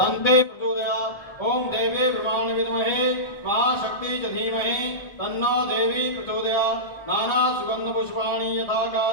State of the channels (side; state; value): right; late; 1.3 ms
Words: प्रचोदयात् ॐ देवी ब्रह्माणि विद्महे महाशक्ति च धीमहि तन्नो देवी प्रचोदयात् नाना सुगन्ध पुष्पाणि यथा